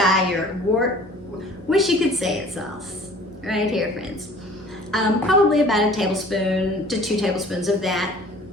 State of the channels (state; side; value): normal; both; correlation 0.49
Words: Wish you could say it sauce. Right here, friends. Probably about a tablespoon to 2 tablespoons of that.